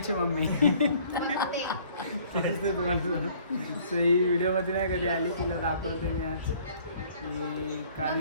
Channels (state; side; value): inverted; both; correlation -0.56